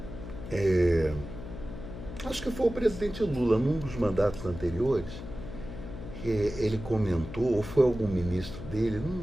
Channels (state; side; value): noise; left; hum, 11 dB below the sound